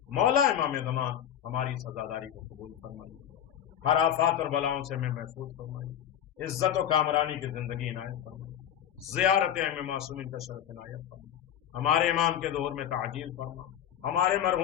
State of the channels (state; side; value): quieter; right; 10.1 dB